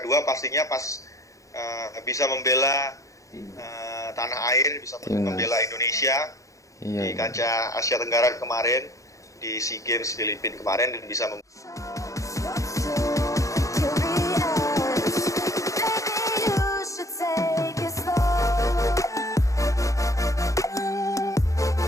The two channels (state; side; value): late; right; 0.16 ms